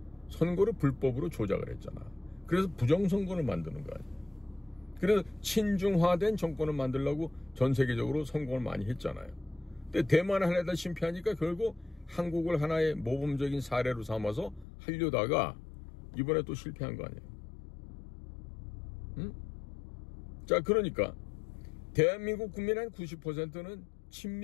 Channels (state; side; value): drops out; right; at 14.7 s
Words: 선거를 불법으로 조작을 했잖아. 그래서 부정선거를 만드는 거 아니에요. 그래서 친중화된 정권을 만들려고 전 세계적으로 성공을 많이 했잖아요. 근데 대만을 하려다 실패하니까 결국 한국을 하나의 모범적인 사례로 삼아서 하려다가 이번에 또 실패한 거 아니에요. 자, 그러니까 대한민국 국민의 한 90%는